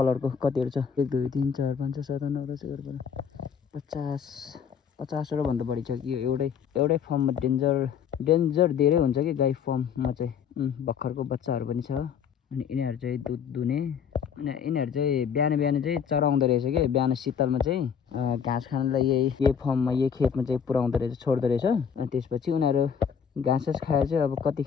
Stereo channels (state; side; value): quieter; right; 7.3 dB